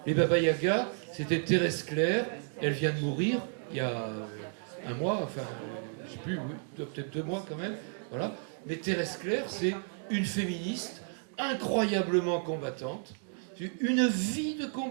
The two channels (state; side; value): silent; left; 56 dB below the other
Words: Les Baba Yaga, c'était Thérèse Claire, elle vient de mourir il y a un mois, enfin, je ne sais plus, oui, peut-être 2 mois quand même, voilà. Mais Thérèse Claire, c'est une féministe incroyablement combattante, une vie de